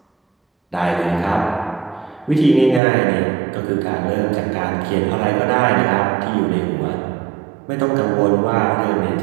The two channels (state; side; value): drops out; left; at 2.8 s